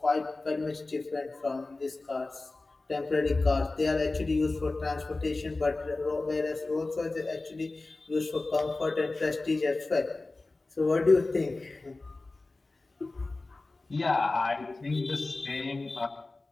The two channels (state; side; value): quieter; right; 3.3 dB